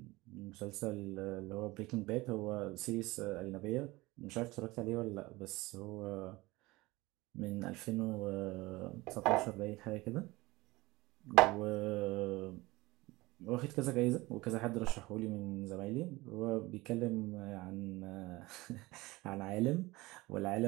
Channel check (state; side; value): quieter; left; 20.9 dB